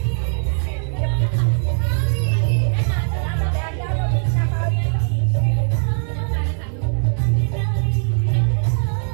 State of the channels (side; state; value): left; silent; digital silence